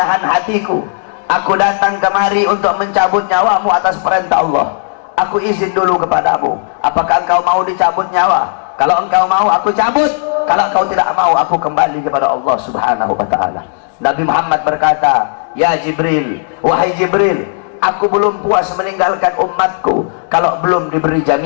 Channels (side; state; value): right; silent; 67 dB below the other